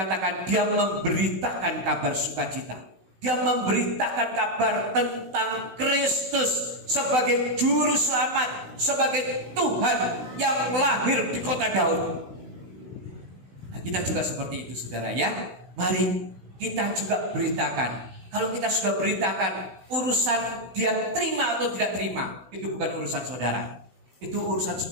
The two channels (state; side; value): late; left; 16 ms